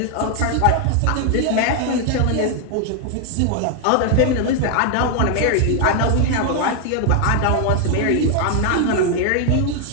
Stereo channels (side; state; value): both; different; correlation 0.00